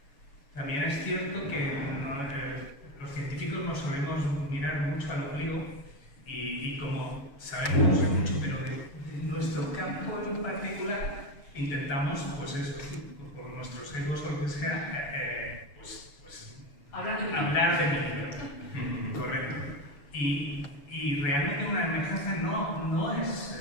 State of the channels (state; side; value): late; right; 7.0 ms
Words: también es cierto que los científicos nos solemos mirar mucho al ombligo y como sabemos mucho, pero de nuestro campo en particular, intentamos, pues eso, por nuestros egos o lo que sea, hablar de mi libro. Correcto. Y realmente una emergencia no